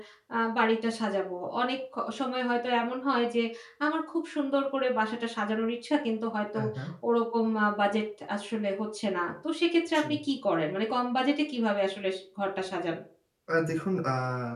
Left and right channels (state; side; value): identical; both; correlation 1.00